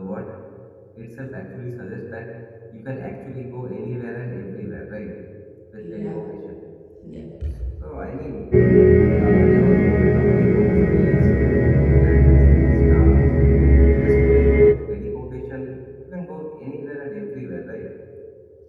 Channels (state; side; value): identical; both; correlation 1.00